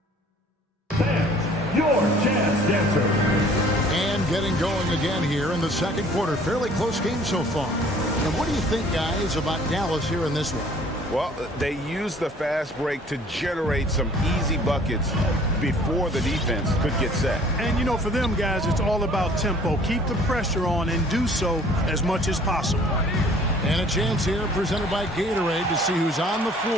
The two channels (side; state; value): both; normal; correlation 0.54